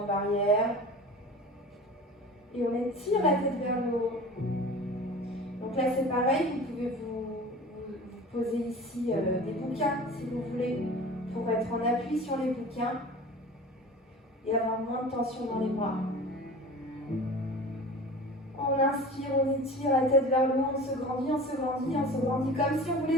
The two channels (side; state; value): both; normal; correlation 0.38